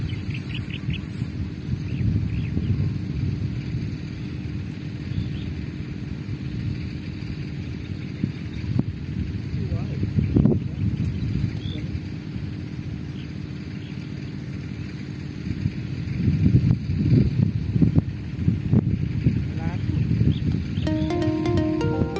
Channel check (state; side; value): identical; both; correlation 1.00